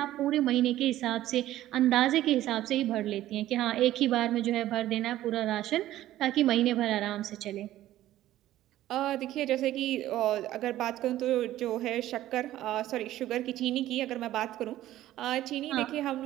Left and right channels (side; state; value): left; quieter; 14.0 dB